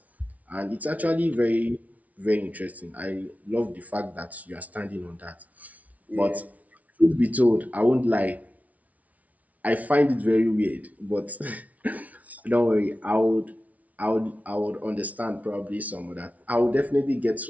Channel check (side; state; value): left; late; 0.070 ms